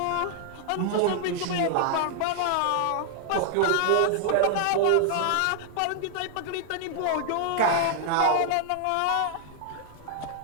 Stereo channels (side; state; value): both; different; correlation -0.01